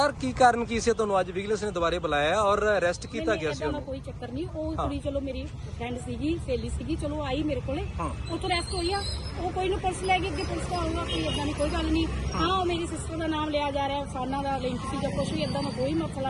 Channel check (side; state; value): both; identical; correlation 1.00